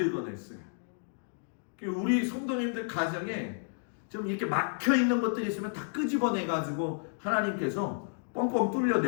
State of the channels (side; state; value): right; silent; digital silence